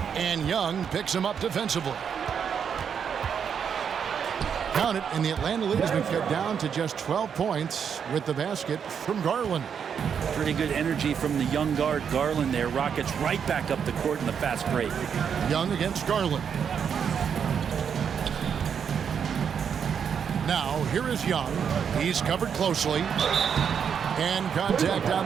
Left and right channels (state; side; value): quieter; left; 7.4 dB